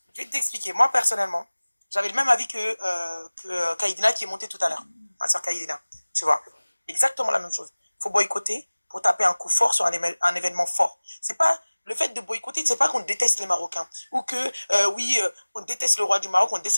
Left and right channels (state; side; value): inverted; both; correlation -1.00